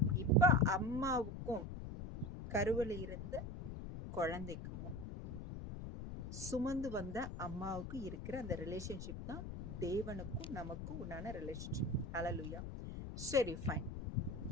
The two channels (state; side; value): noise; left; rumble, 7 dB below the sound